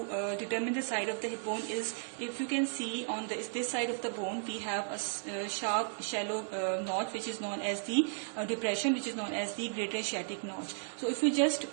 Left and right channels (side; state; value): left; silent; digital silence